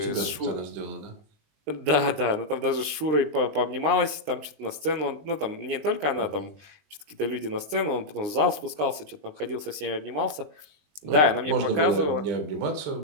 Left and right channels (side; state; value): left; late; 20 ms